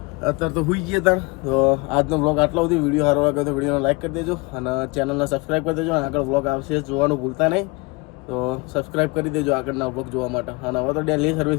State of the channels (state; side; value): quieter; right; 27.0 dB